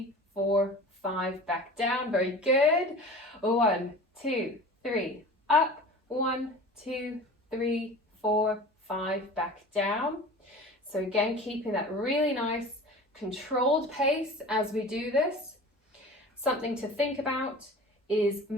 4, 5, back down, very good. 1, 2, 3, up, 1, 2, 3, 4, 5, back down. So again, keeping that really nice controlled pace as we do this. Something to think about is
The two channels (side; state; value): both; normal; correlation 0.38